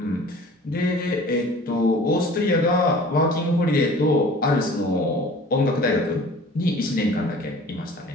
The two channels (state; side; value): normal; both; correlation 0.46